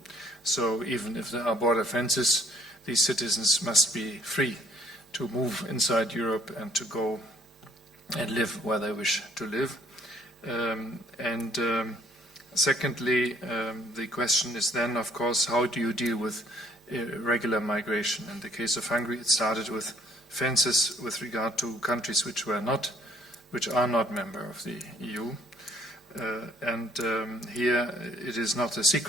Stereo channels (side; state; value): both; normal; correlation 0.60